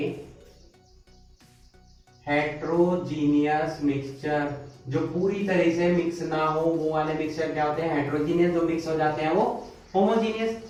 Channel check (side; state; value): both; identical; correlation 1.00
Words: heterogeneous mixture, जो पूरी तरह से मिक्स ना हो, वो वाले मिक्सचर क्या होते हैं, हेट्रोजीनियस। जो मिक्स हो जाते हैं वो होमोजीनियस।